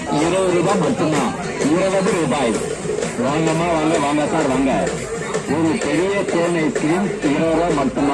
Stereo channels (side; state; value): both; identical; correlation 1.00